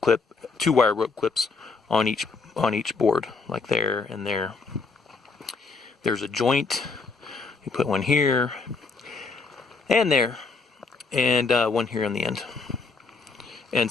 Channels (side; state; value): right; quieter; 4.3 dB